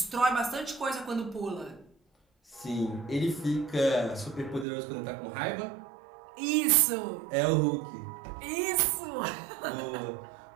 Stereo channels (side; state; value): left; drops out; at 4.7 s